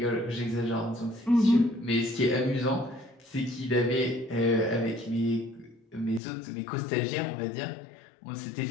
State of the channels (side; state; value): right; drops out; at 6.2 s